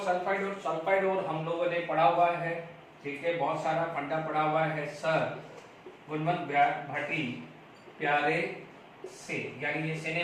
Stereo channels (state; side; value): identical; both; correlation 1.00